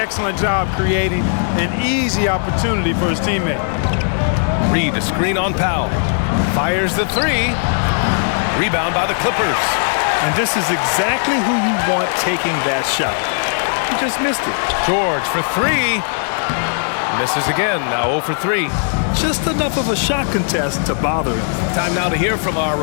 job creating an easy opportunity for his teammate. Reed, a screen on Powell. Fires the three. Rebound by the Clippers. And this is exactly who you want taking that shot. He just missed it. George for three. Misses again, now 0 for 3. Just enough of a shot contest to bother him. Time now to hear from our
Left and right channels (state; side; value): silent; right; digital silence